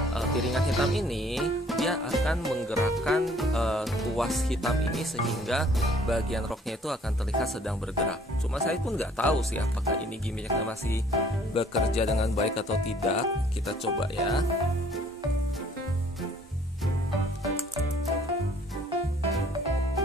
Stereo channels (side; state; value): both; normal; correlation 0.58